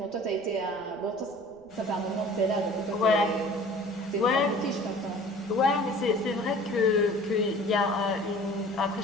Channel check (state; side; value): noise; right; rumble, 28 dB below the sound